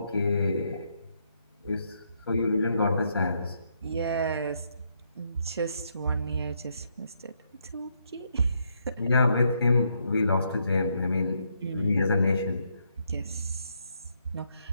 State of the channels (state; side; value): inverted; both; correlation -0.76